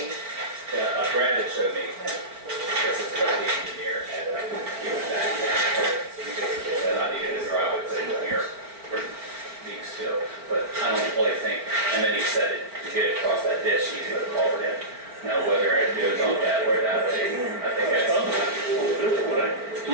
Yeah, Brad had showed me, this is what the engineer had given back. He basically said, I needed a driveway put in here for being still, but I don't really think, and then he said to get it across that ditch, he put a culvert in. Now, whether it goes on that or that way, I think that's.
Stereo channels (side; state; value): left; late; 4.4 ms